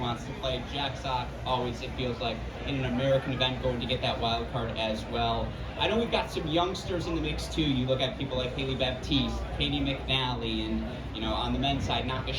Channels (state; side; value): identical; both; correlation 1.00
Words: to play. Jack Sock always, it feels like, in an American event going to get that wild card as well. I know we've got some youngsters in the mix too. You look at people like Haley Baptiste, Katie McNally, and on the men's side,